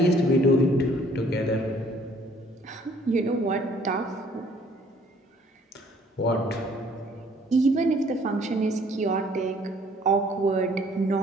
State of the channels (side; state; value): both; normal; correlation 0.59